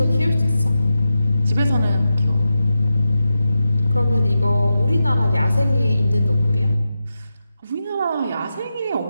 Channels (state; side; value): inverted; both; correlation -0.90